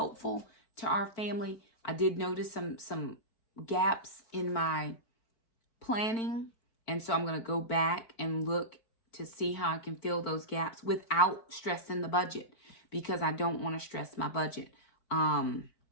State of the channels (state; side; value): late; right; 4.4 ms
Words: to our family. I did notice some gaps in my planning. And so I'm going to go back and look to see how I can fill those gaps without stressing the budget, because I don't want to stress my budget. I